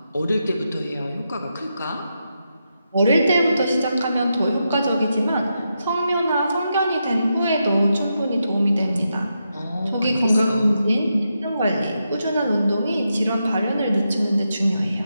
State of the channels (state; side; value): inverted; both; correlation -0.85